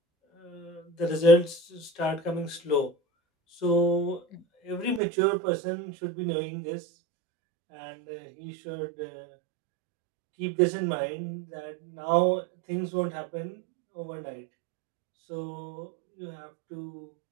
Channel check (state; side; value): drops out; left; at 5.0 s